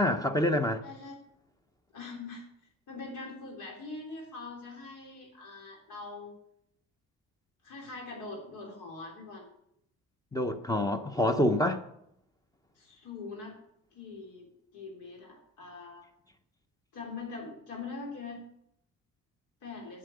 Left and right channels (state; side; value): normal; both; correlation 0.49